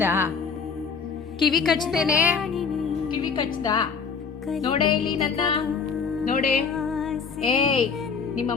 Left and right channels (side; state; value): right; quieter; 5.7 dB